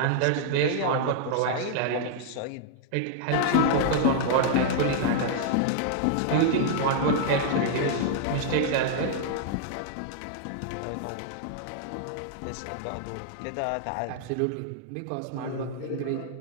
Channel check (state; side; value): different; both; correlation -0.01